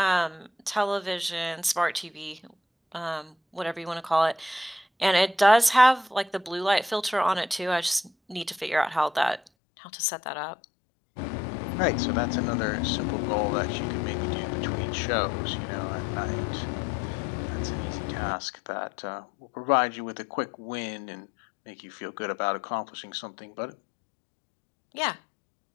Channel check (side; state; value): right; drops out; at 9.4 s